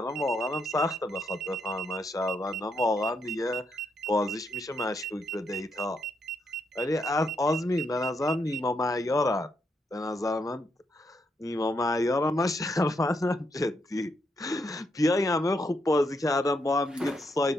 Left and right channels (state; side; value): normal; both; correlation 0.78